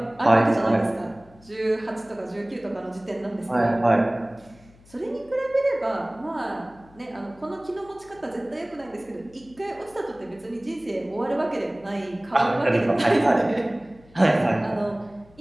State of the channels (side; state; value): left; noise; hum, 26 dB below the sound